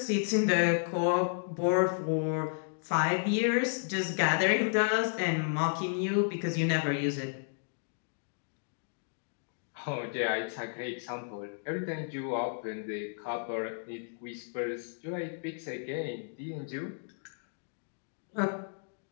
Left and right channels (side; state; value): right; silent; digital silence